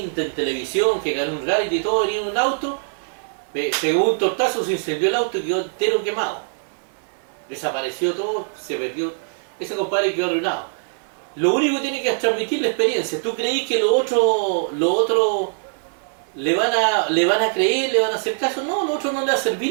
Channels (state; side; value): silent; left; digital silence